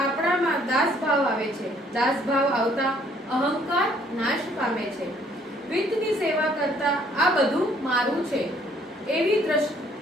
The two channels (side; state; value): both; normal; correlation 0.62